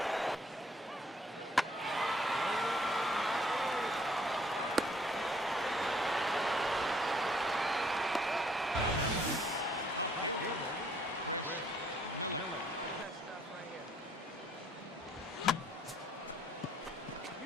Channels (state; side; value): normal; both; correlation 0.64